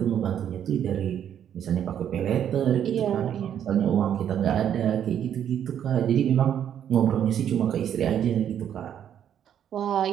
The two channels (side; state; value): left; quieter; 9.5 dB